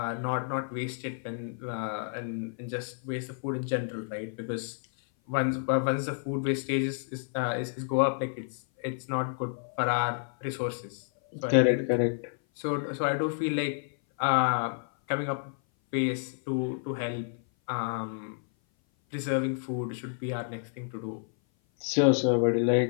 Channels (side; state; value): right; silent; 56 dB below the other